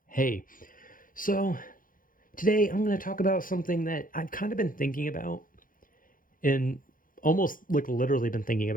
Hey, so today I'm going to talk about something that I've kind of been thinking about and almost like literally been thinking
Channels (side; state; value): right; late; 0.40 ms